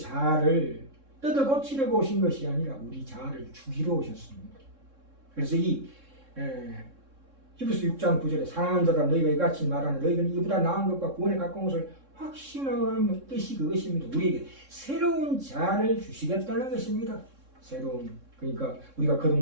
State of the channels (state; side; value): late; left; 3.7 ms